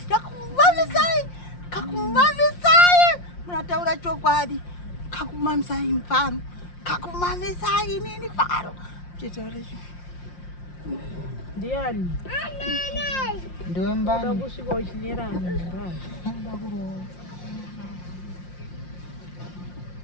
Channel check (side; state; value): right; late; 5.7 ms